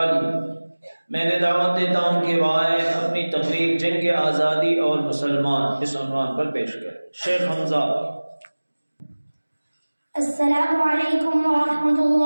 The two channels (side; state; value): both; inverted; correlation -1.00